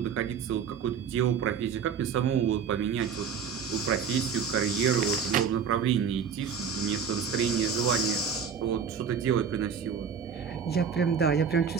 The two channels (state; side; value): quieter; left; 6.8 dB